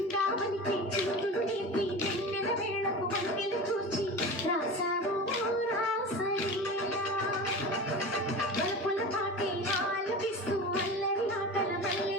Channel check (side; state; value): both; normal; correlation 0.31